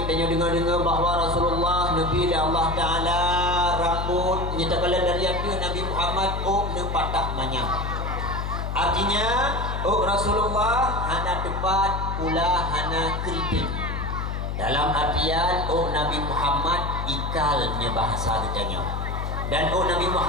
tanya dengar-dengar bahawa Rasulullah Nabi dan Allah Ta'ala rambut nyatakan dari hati Nabi Muhammad patah manyam. Artinya Rasulullah hana tepat pula hana keriting. Dalam artian Nabi Muhammad ikalnya bahasa ditanya. Dan Nabi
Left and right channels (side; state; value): left; noise; hum, 3 dB below the sound